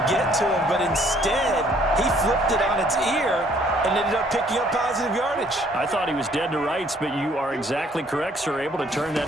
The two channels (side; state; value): both; normal; correlation 0.62